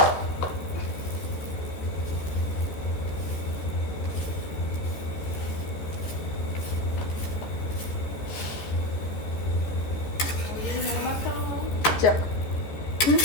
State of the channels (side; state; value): right; late; 14 ms